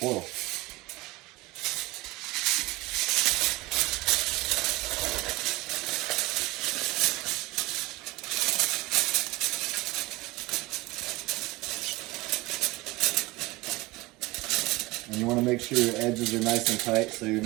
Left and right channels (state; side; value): quieter; left; 21.6 dB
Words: And you want to make sure your edges are nice and tight so you're